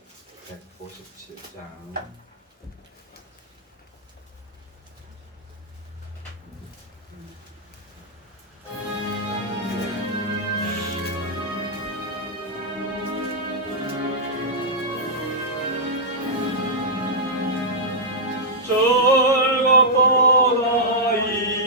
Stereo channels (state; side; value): normal; both; correlation -0.09